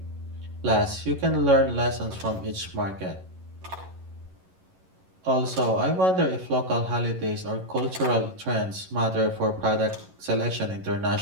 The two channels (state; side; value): late; left; 11 ms